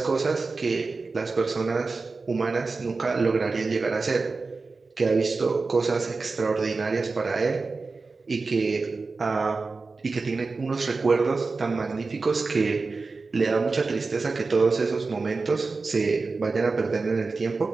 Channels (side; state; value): left; quieter; 4.0 dB